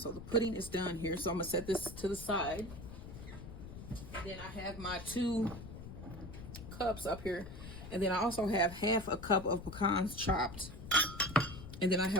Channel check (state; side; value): noise; left; rumble, 12 dB below the sound